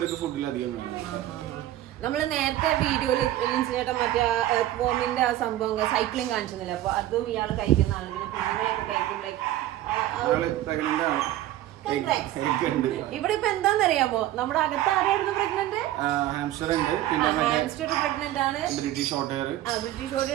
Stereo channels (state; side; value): quieter; left; 14.0 dB